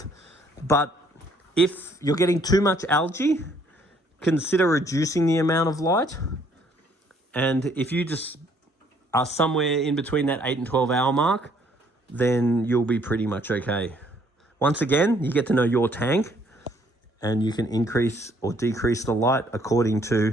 But if you're getting too much algae, consider reducing the amount of light. And if you just are somewhere in between that 8 and 12 hour mark, then you'll be pretty much okay. Once again, you get to know your tank and you can increase or decrease the light according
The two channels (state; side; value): normal; both; correlation 0.64